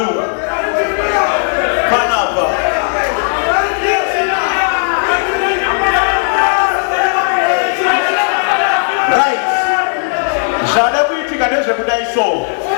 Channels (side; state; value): right; silent; digital silence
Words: Right. Jada kuitika ndezve kudai so.